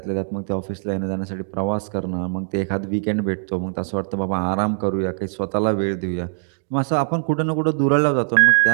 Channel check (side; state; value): left; silent; digital silence